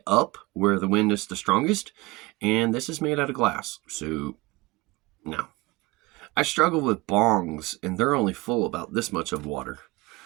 up where the wind is the strongest, and this is made out of glass. So, no. I struggle with bongs, and they're only full about this much of water.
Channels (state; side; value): quieter; left; 22.7 dB